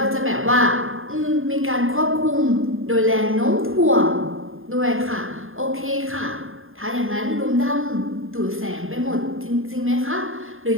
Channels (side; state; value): left; late; 0.60 ms